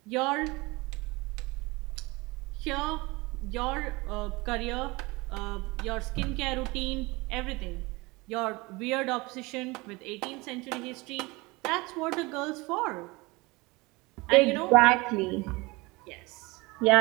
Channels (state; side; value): quieter; left; 23.8 dB